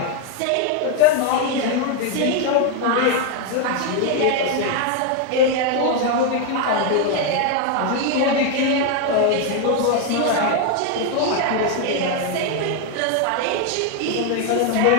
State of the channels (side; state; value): both; different; correlation 0.01